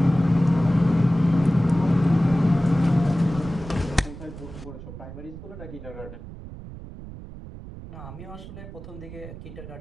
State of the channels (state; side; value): noise; right; rumble, 13 dB below the sound